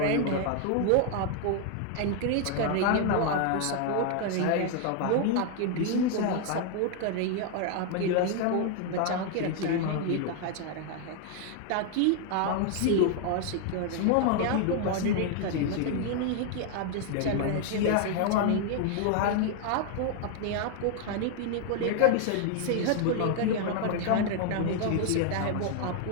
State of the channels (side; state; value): both; different; correlation 0.00